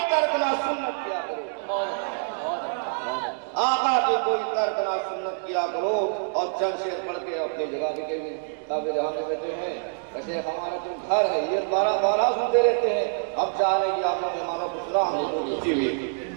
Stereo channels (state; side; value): silent; left; 61 dB below the other